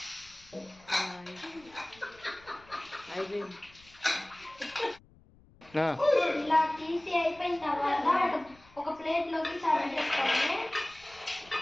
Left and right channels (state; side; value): noise; left; rumble, 26 dB below the sound